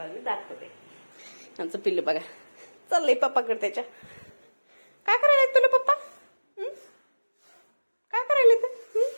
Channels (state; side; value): inverted; both; correlation -1.00